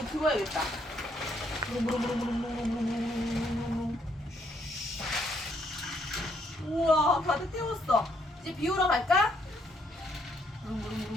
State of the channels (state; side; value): normal; both; correlation 0.71